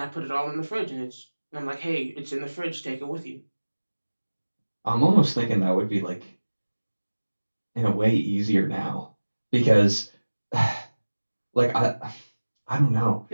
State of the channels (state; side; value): inverted; both; correlation -1.00